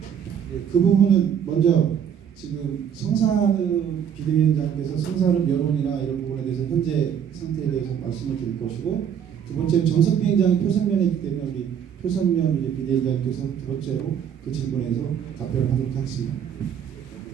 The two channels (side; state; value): left; quieter; 8.4 dB